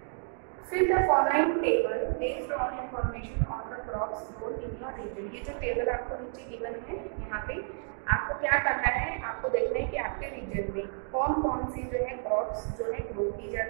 Fill the following table based on information on the crops grown in your region. ये जो टेबल आपको नीचे गिवन है, यहाँ पे आपको क्या करना है, आपको देखना है कि आपके रीजन में कौन कौन सी जो है क्रॉप्स जो है ग्रो की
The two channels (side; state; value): left; silent; 55 dB below the other